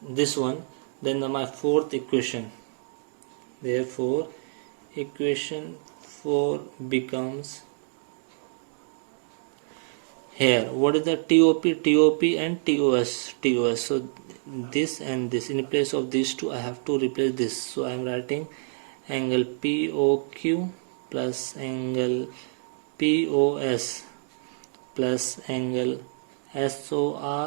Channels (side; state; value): left; silent; digital silence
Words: this one, then my fourth equation, therefore equation 4 becomes here, what is the TOP and TOS. So this and this, in place of these two I have to replace this. So I am writing angle POQ plus angle POS plus angle